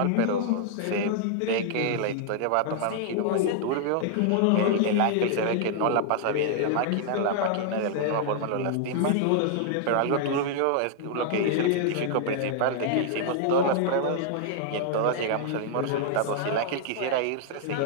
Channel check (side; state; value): both; different; correlation -0.01